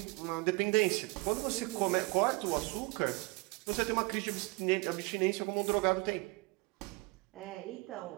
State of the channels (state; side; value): quieter; left; 25.8 dB